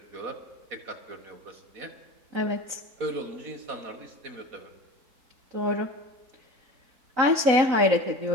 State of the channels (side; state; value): left; late; 3.9 ms